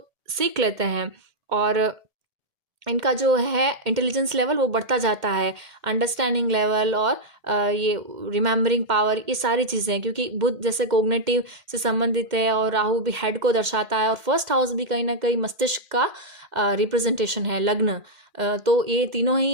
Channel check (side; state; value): left; late; 2.1 ms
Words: सीख लेते हैं और इनका जो है इंटेलिजेंस लेवल वो बढ़ता जाता है, अंडरस्टैंडिंग लेवल और ये रिमेम्बरिंग पावर, ये सारी चीज़ें, क्योंकि बुध जैसे कोग्निटिव से संबंधित है और राहु भी हेड को दर्शाता है और फर्स्ट हाउस भी कहीं ना कहीं मस्तिष्क का रिप्रेजेंटेशन है, लग्न। तो ये तीनों ही